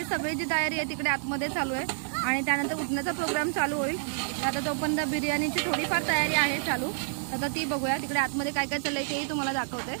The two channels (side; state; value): left; silent; digital silence